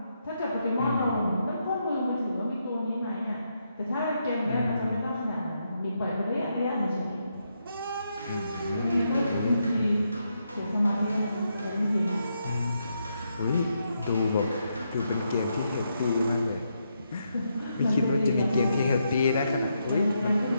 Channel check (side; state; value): both; inverted; correlation -0.81